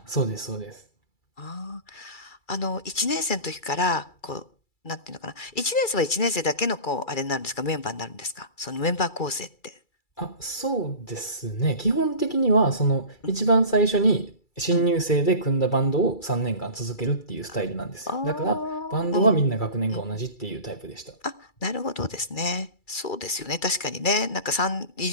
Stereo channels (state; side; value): late; right; 2.3 ms